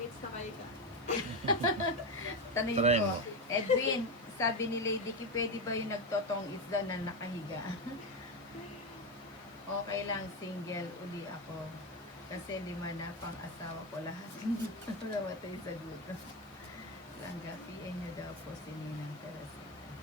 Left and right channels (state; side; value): noise; right; hiss, 27 dB below the sound